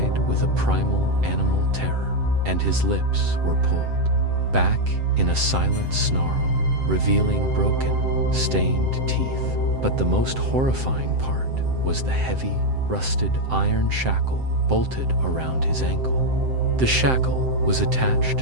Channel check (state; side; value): late; left; 7.7 ms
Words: with a primal animal terror, and his lips were pulled back in a silent snarl, revealing broken, stained teeth. But the most horrifying part was the heavy, rusted iron shackle bolted around his ankle. The shackle was